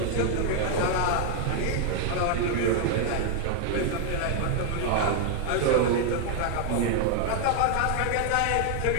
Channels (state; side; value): different; both; correlation 0.00